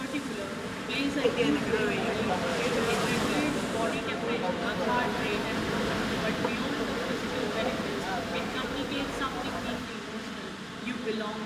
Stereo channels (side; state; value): both; identical; correlation 1.00